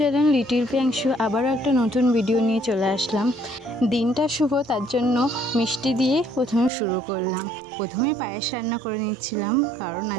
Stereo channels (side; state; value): left; drops out; at 6.7 s